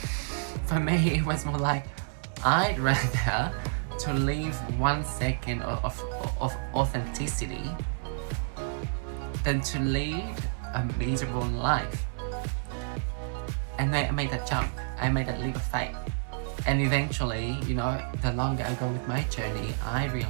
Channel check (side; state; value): left; silent; 58 dB below the other